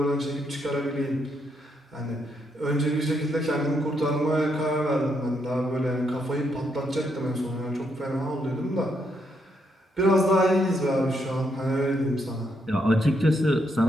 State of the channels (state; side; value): normal; both; correlation 0.77